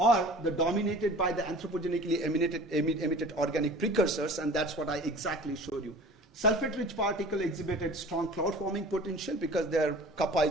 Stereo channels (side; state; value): both; normal; correlation 0.43